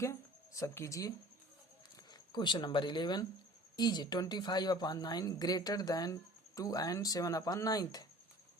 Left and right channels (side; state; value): both; normal; correlation 0.46